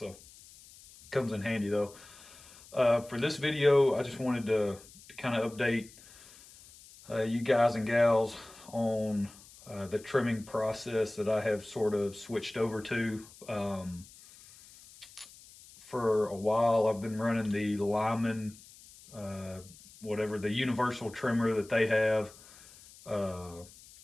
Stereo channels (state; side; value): noise; left; hiss, 22 dB below the sound